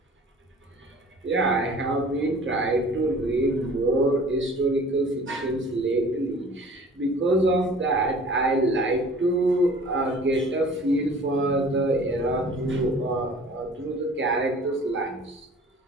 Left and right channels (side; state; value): both; normal; correlation 0.47